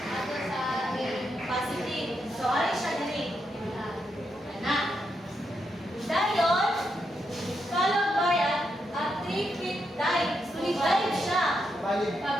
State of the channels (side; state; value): both; normal; correlation 0.82